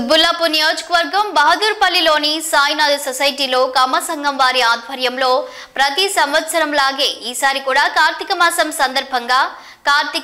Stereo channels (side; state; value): both; identical; correlation 1.00